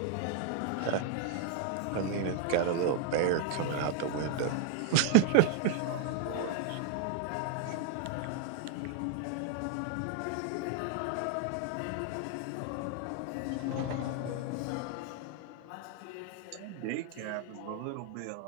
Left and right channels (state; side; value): different; both; correlation 0.00